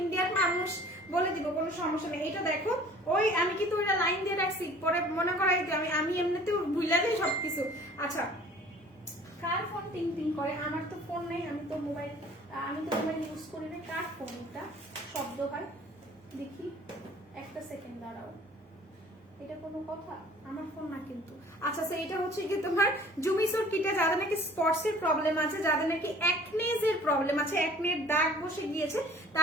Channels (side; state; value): both; normal; correlation 0.50